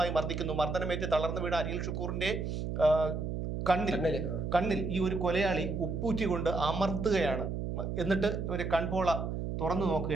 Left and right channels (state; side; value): noise; right; hum, 3 dB below the sound